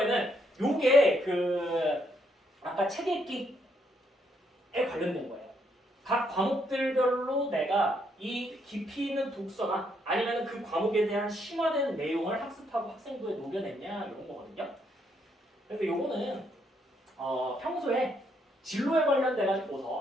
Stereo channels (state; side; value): normal; both; correlation 0.74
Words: 요게 아까 책 읽기에 관련된 거예요. 각 과목들별로 내가 이 깊이 있는 독서나 아니면 그 과목에 대한 심화된 내용을 학습하고 학생부에 녹여냈냐 이런 거거든요. 그래서 요거는 평소에 진로에 관련돼